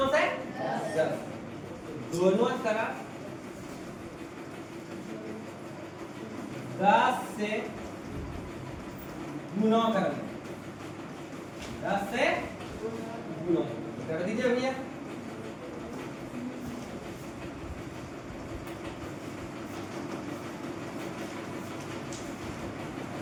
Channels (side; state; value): both; identical; correlation 1.00